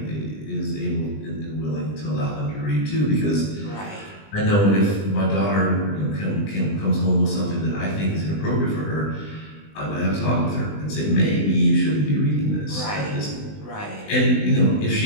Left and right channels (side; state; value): right; late; 20 ms